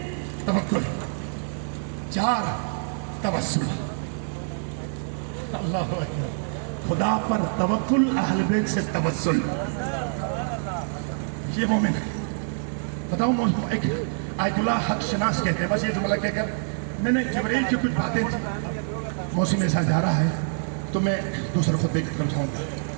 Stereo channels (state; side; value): silent; left; digital silence